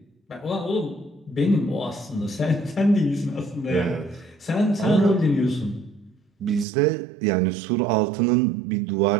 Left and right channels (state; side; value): drops out; left; at 6.7 s